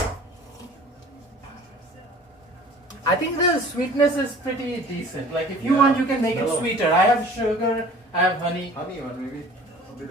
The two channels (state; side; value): normal; both; correlation 0.47